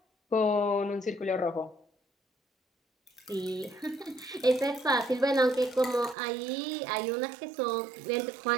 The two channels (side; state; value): left; drops out; at 6.2 s